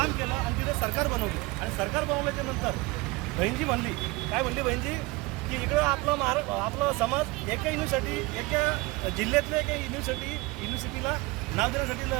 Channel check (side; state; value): left; quieter; 23.0 dB